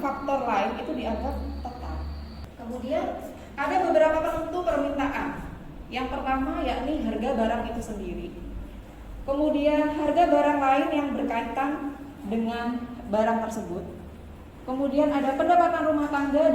lain itu dianggap tetap. Kemudian ada beberapa penentu permintaan. Yang pertama yakni harga barang itu sendiri. Kemudian harga barang lain yang berkaitan dengan barang tersebut. Kemudian ada pendapatan rumah tangga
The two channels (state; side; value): identical; both; correlation 1.00